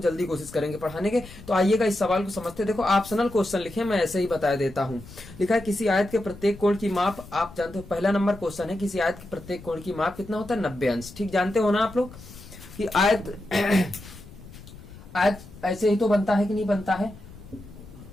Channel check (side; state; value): left; noise; rumble, 18 dB below the sound